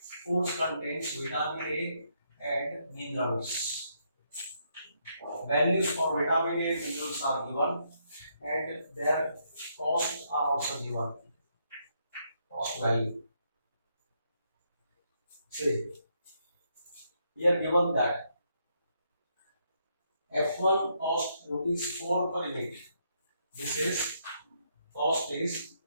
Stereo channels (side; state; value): both; inverted; correlation -0.75